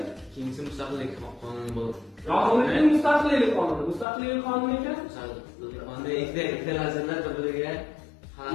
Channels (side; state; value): right; drops out; at 4.0 s